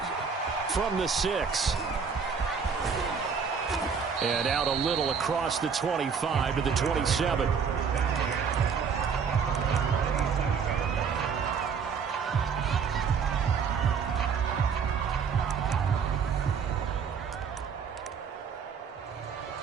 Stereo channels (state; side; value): quieter; left; 6.2 dB